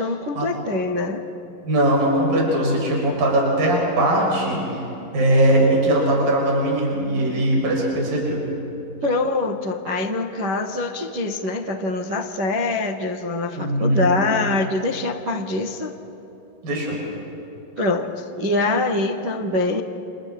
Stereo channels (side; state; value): left; late; 11 ms